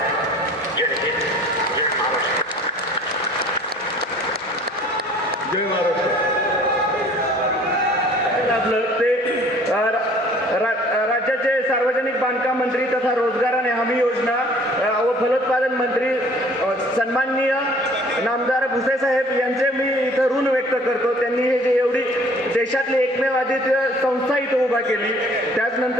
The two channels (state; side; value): normal; both; correlation 0.53